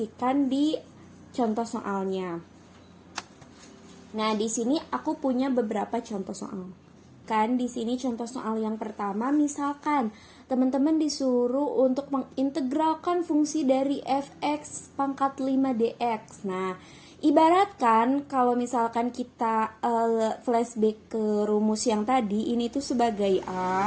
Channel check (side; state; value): both; identical; correlation 1.00